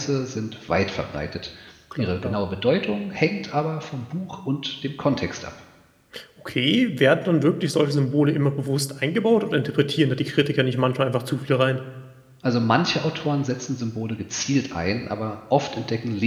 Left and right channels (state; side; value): identical; both; correlation 1.00